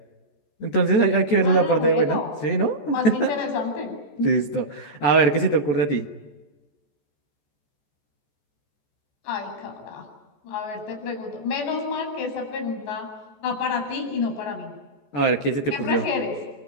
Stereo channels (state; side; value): late; right; 14 ms